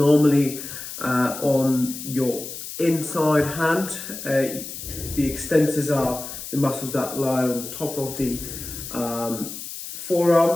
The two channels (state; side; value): noise; left; hiss, 10 dB below the sound